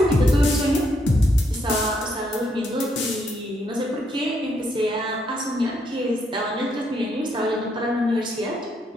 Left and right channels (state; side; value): normal; both; correlation 0.75